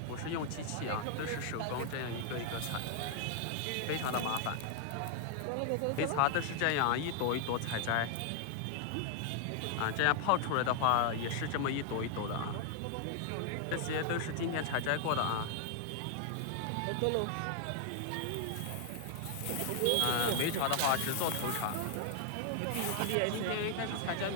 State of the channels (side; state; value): both; different; correlation 0.00